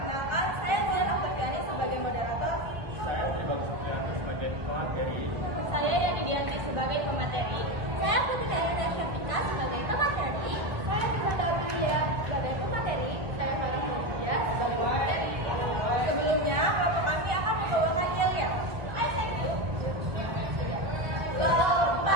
saya Zian Aftariani sebagai moderator. Saya Pribadi Supriyanti sebagai pemateri. Saya Yani Dianti sebagai pemateri. Saya Putri Dayana Syafika sebagai pemateri. Saya Ibu sebagai pemateri. Saya Farah Media sebagai pemateri. Sebelumnya, kelompok kami akan membawakan yel-yel.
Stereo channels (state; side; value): late; left; 1.2 ms